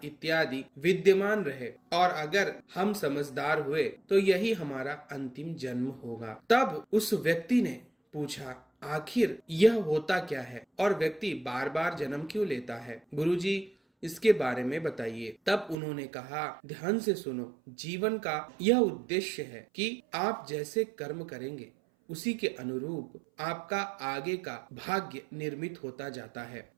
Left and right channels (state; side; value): drops out; left; at 15.8 s